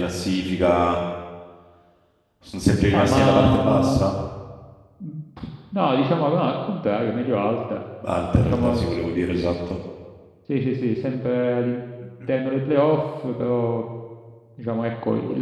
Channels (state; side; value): identical; both; correlation 1.00